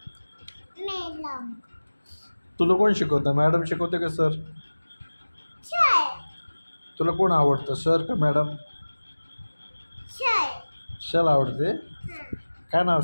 मॅडम तुला कोण शिकवतं? मॅडम शिकवते का सर? सर तुला कोण आवडतं, सर का मॅडम? सर शल आवडते. हां काय नाव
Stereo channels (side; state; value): both; inverted; correlation -1.00